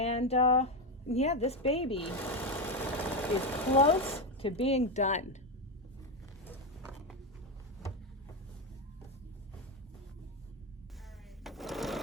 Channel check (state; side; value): normal; both; correlation 0.11